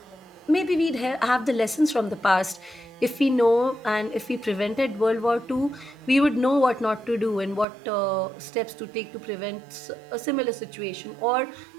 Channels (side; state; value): left; drops out; at 7.7 s